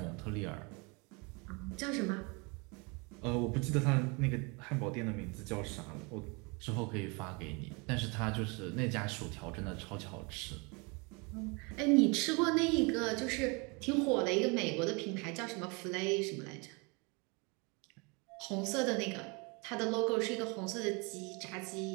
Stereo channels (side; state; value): left; quieter; 30.0 dB